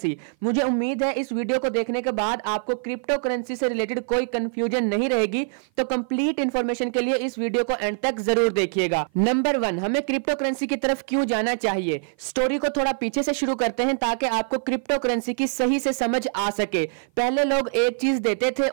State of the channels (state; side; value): silent; left; 55 dB below the other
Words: मुझे उम्मीद है इस वीडियो को देखने के बाद आपको क्रिप्टो करेंसी से रिलेटेड कोई कंफ्यूजन नहीं रहेगी, तो कंप्लीट इंफॉर्मेशन के लिए इस वीडियो को एंड तक जरूर देखिएगा। नंबर 1, हमें क्रिप्टो करेंसी की तरफ क्यों जाना चाहिए। स्टोरी को थोड़ा पीछे से शुरू करते हैं ताकि आपको क्रिप्टो करेंसी की सही से समझ आ सके। पहले लोग एक चीज देते थे